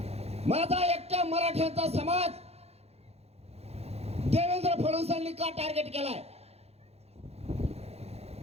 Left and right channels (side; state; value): left; late; 0.30 ms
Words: माझा एकट्या मराठ्यांचा समाज देवेंद्र फडणवीसांनी का टार्गेट केलाय?